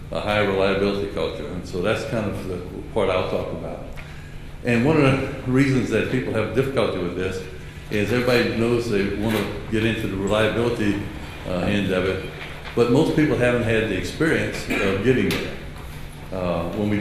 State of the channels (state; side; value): identical; both; correlation 1.00